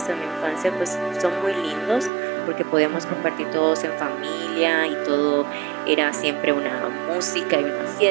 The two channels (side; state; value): left; drops out; at 2.1 s